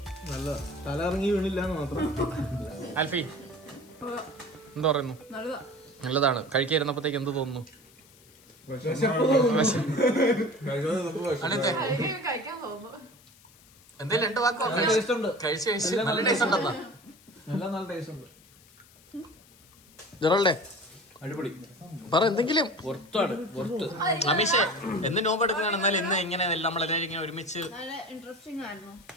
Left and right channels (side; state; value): left; noise; hiss, 26 dB below the sound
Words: നല്ല തല ഇറങ്ങി വീണില്ല എന്ന് മാത്രം. ആൽഫി എന്ത് പറയുന്നു? നല്ലതാണ്. കഴിക്കാതിരുന്നപ്പോഴത്തേക്ക് എന്ത് തോന്നുന്നു? എന്തേലും രണ്ട് വാക്കോ? കഴിച്ച് നല്ല ടേസ്റ്റ് ഉണ്ടെന്നാ. നല്ല ടേസ്റ്റ് ഉണ്ട്. ജെറോൾഡേ അടിപൊളി. പറ എന്തെങ്കിലും. അമീഷേ, എന്ന് നോമ്പ് എടുക്കുകയാണ്. എന്നാലും ഇന്ന് ഇങ്ങനെ നമ്മളെല്ലാവരും ഇങ്ങനെ ഒരുമിച്ച്